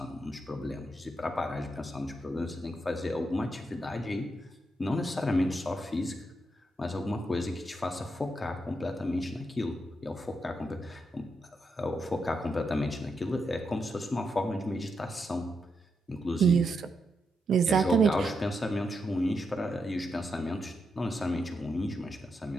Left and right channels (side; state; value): both; normal; correlation 0.83